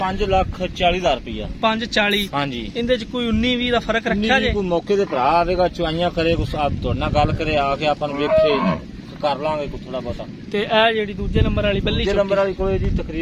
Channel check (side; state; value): both; identical; correlation 1.00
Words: 5,40,000 ਰੁਪਇਆ। 540। ਹਾਂਜੀ ਇਹਦੇ ਚ ਕੋਈ 19-20 ਦਾ ਫਰਕ ਰੱਖਿਆ ਜੇ? ਕੋਈ ਮੌਕੇ ਤੇ ਭਰਾ ਆਵੇਗਾ ਚੁਆਈਆਂ ਕਰੇ ਕੁਛ ਆਪ ਤੁਹਾਡੇ ਨਾਲ ਗੱਲ ਕਰੇ ਆ ਕੇ ਆਪਾਂ ਨੂੰ ਵੇਖੇ ਕਰ ਲਾਂਗੇ ਕੋਈ ਥੋੜਾ ਬਹੁਤਾ। ਤੇ ਇਹ ਜਿਹੜੀ ਦੂਜੇ ਨੰਬਰ ਵਾਲੀ ਬੱਲੀ ਦੂਜੇ ਨੰਬਰ ਵਾਲੀ ਕੋਲੇ ਜੀ